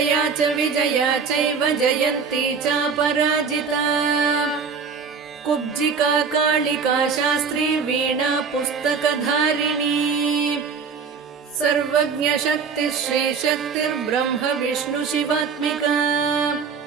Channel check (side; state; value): left; quieter; 5.7 dB